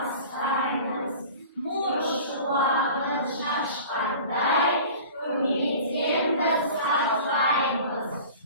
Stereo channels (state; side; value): inverted; both; correlation -0.41